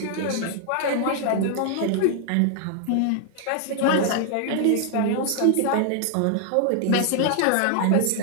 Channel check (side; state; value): both; different; correlation 0.00